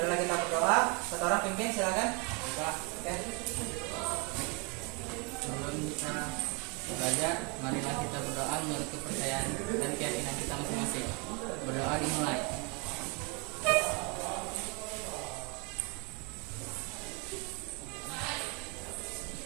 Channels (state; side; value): quieter; left; 30.6 dB